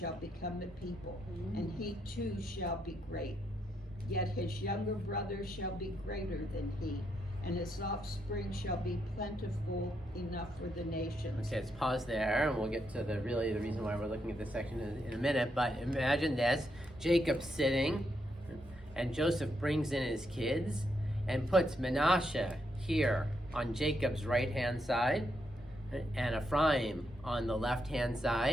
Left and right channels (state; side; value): normal; both; correlation 0.80